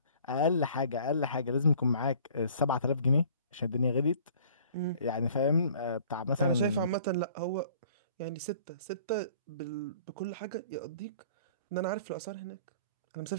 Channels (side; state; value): both; inverted; correlation -0.52